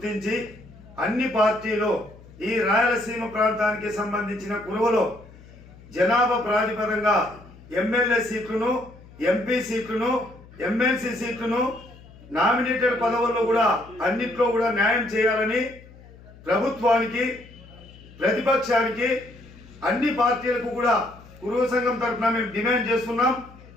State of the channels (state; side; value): noise; left; hum, 21 dB below the sound